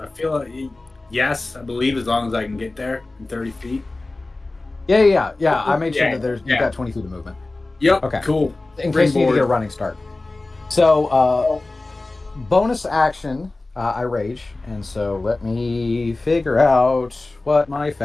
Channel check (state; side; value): quieter; right; 3.1 dB